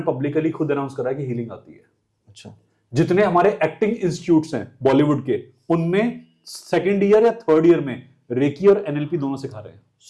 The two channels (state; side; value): identical; both; correlation 1.00